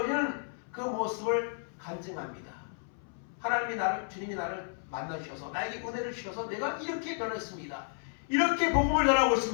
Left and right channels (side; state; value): right; silent; 56 dB below the other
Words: 그 모습을 간증합니다. 주님이 나를 만나주셔서 나에게 은혜를 주셔서 내가 이렇게 변했습니다. 이렇게 복음을 전하고